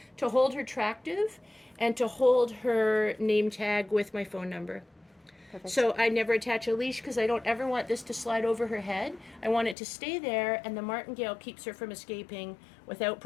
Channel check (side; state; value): right; drops out; at 9.8 s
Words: to hold her tractive, and to hold her name tag with my phone number. Perfect. So I never attach a leash because I don't ever want this to slide over her head. I want it to stay there, and the martingale keeps her from escaping without